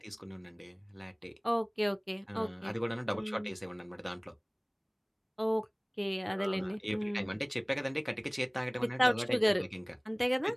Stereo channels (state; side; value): identical; both; correlation 1.00